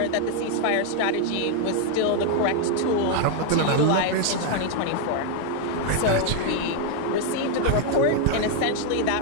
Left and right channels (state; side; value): different; both; correlation 0.00